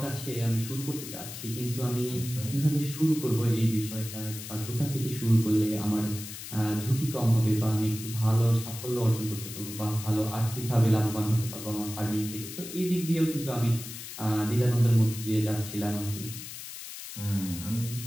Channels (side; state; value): left; noise; hiss, 10 dB below the sound